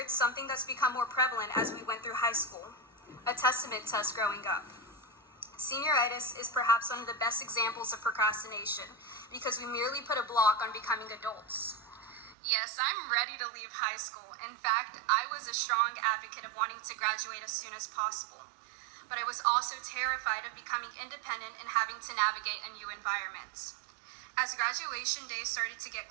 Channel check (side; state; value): left; drops out; at 12.4 s